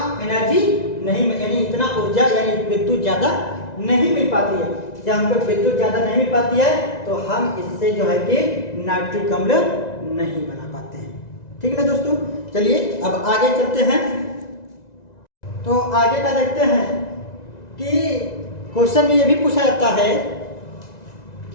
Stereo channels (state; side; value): late; right; 1.9 ms